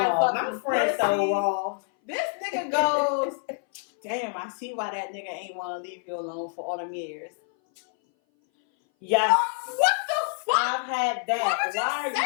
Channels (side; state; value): right; silent; 58 dB below the other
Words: fucking pussy, so raw. This nigga goes, damn, I see why that nigga ain't want to leave you alone for all them years. Yes. What the fuck? I've had that. Why would you